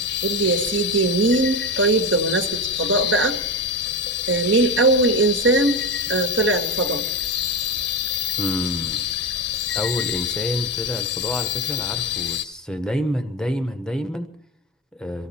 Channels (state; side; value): normal; both; correlation 0.18